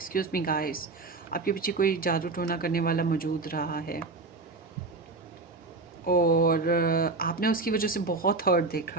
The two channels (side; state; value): left; quieter; 3.6 dB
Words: me guys, आपके पीछे कोई जादू टोना करने वाला मौजूद रहा है और आपने उसकी वजह से बहुत हर्ट